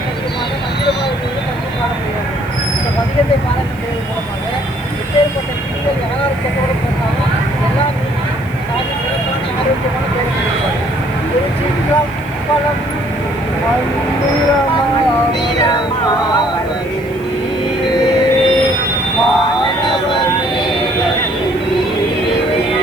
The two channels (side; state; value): right; noise; hiss, 26 dB below the sound